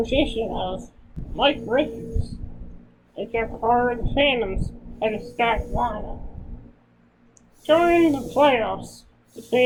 of Mike Richards, they kept part of the Phantoms at a stacked lineup. Going into the playoffs, the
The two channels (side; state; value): both; identical; correlation 1.00